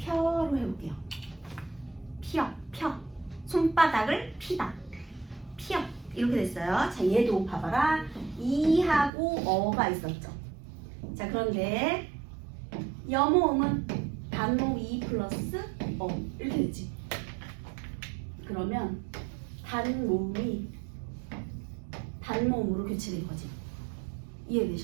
해볼게요. 펴. 손바닥을 피다. 피어. 이렇게 됐어요. 자, 얘도 봐봐라. 이하고 어가 있었죠. 자, 그런데 여모음은 단모음 2 플러스 어 이렇게 됐지. 그러면 단모음이 단모음으로 교체된 거지.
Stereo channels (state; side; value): drops out; left; at 9.1 s